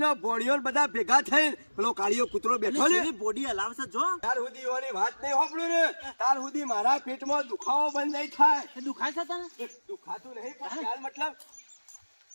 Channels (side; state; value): both; inverted; correlation -1.00